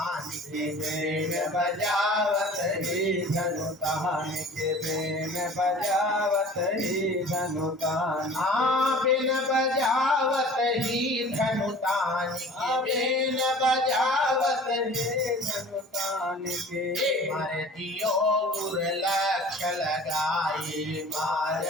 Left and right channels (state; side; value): normal; both; correlation 0.44